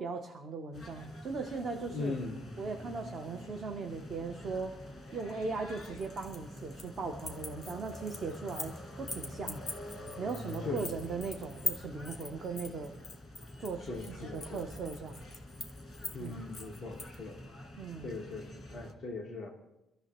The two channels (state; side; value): normal; both; correlation 0.65